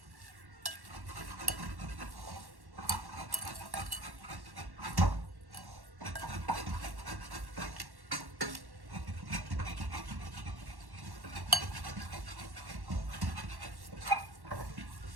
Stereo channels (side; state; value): left; late; 1.1 ms